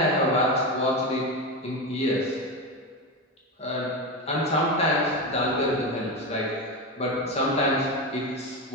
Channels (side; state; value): both; normal; correlation 0.17